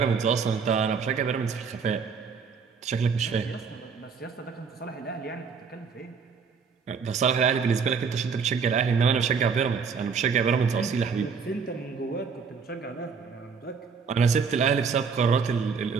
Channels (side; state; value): left; quieter; 5.8 dB